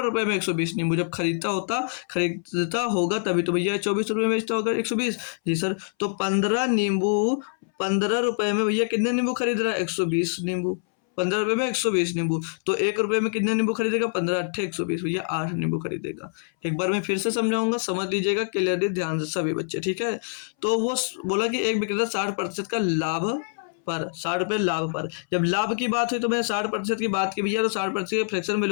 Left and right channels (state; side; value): silent; right; 62 dB below the other